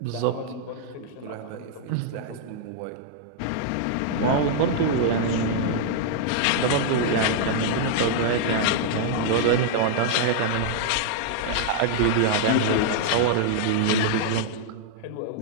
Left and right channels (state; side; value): different; both; correlation -0.01